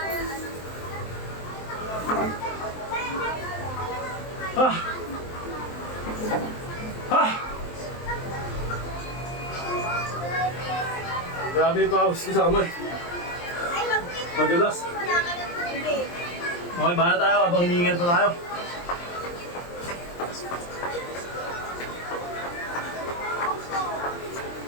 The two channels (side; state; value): right; late; 23 ms